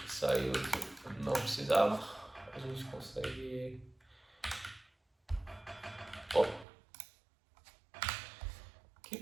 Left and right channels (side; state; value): left; drops out; at 6.7 s